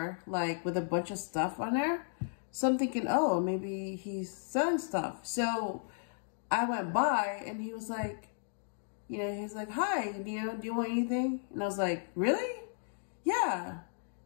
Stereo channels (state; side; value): silent; right; digital silence